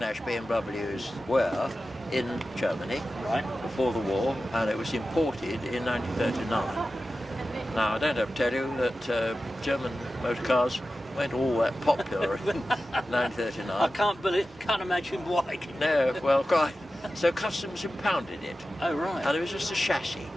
BMWs were in Germany before the war, and it was imported in 1939. Now, I don't have to tell you that German motor cars weren't all that popular in 1939. I can't imagine why. No, well, quite. So customs impounded it. Oh, right. And it was just a chassis.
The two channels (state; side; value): normal; both; correlation 0.93